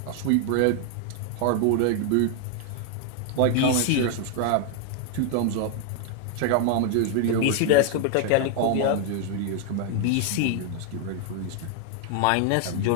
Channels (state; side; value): different; both; correlation 0.00